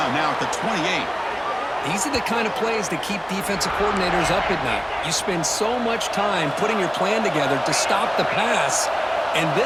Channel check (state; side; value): identical; both; correlation 1.00